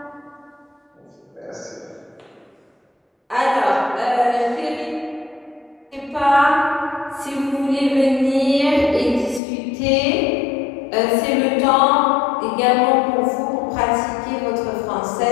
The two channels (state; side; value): drops out; right; at 9.4 s